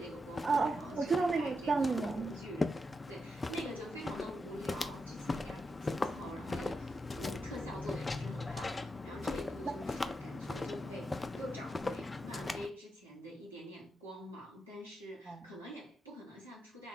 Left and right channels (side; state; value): both; normal; correlation 0.85